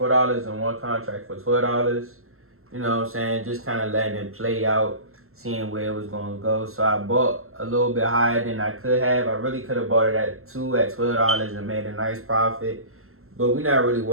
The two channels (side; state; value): left; late; 0.62 ms